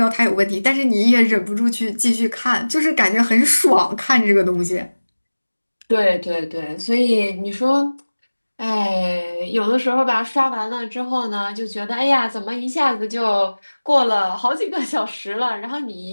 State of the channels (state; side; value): inverted; both; correlation -1.00